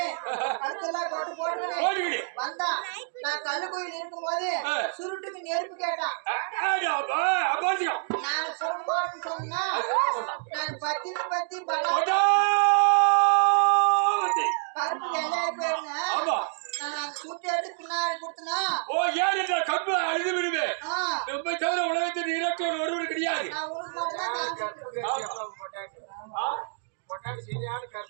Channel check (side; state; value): left; silent; digital silence